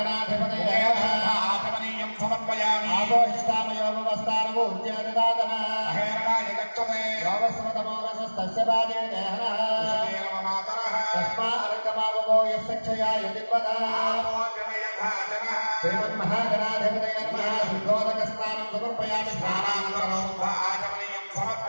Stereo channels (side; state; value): both; inverted; correlation -1.00